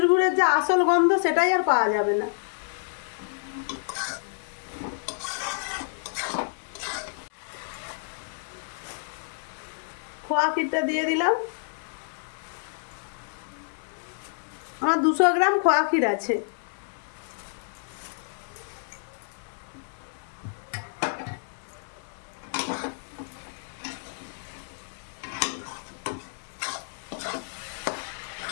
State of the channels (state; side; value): silent; right; digital silence